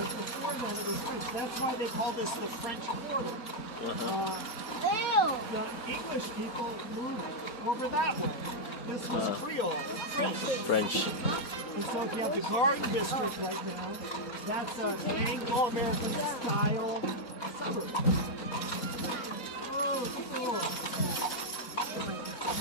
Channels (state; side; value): normal; both; correlation -0.02